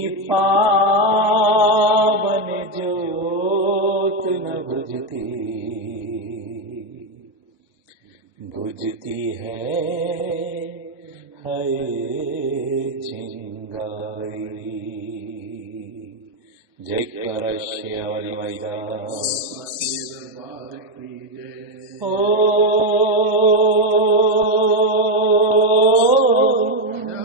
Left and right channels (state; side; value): normal; both; correlation 0.05